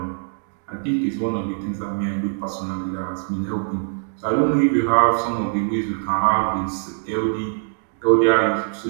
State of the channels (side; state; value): left; silent; digital silence